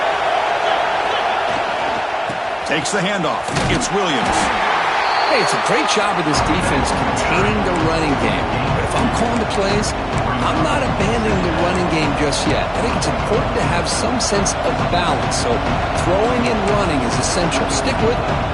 Takes the handoff. It's Williams. Hey, it's a great job of this defense containing the running game. But if I'm calling the plays, I'm not abandoning the running game just yet. I think it's important to have some sense of balance. So throwing and running is essential. Stick with it.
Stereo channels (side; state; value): both; identical; correlation 1.00